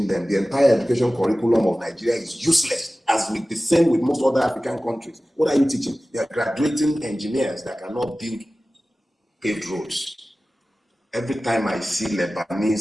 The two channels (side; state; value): both; normal; correlation 0.96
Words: them? The entire education curriculum of Nigeria is useless, as with the same with most other African countries. What are you teaching? They are graduating engineers that cannot build paved roads. Every time I see Lebanese,